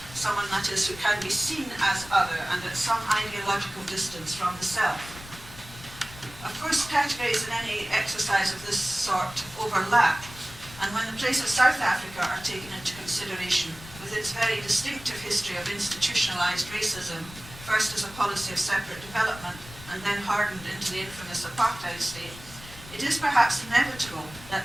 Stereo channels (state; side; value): noise; left; rumble, 17 dB below the sound